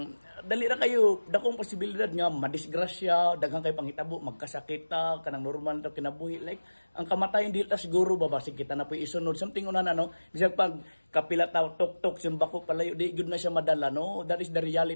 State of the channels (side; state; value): both; inverted; correlation -1.00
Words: dali ra kayo dakong posibilidad nga madisgrasya, daghang kay panghitabo, magkasakit ta, kanang normal ta kinabuhi, like ang kamatayon dili ta siguro babasig kita na puy isunod something una na, no? Bisag pag kapila ta tok-tok simbako palayo di gud na siya madala, no? That is the